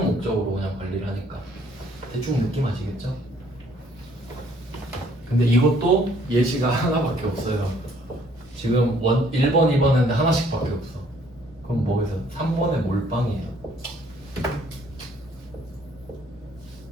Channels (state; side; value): normal; both; correlation 0.62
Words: 목적으로 그냥 관리를 하니까. 대충 느낌 아시겠죠? 근데 이것도 예시가 하나밖에 없어요. 지금 1번, 2번 했는데 하나씩밖에 없어. 그럼 뭐겠어요? 3번에 몰빵이에요.